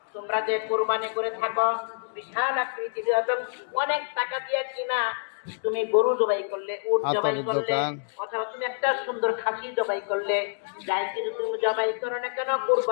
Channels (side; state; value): right; silent; digital silence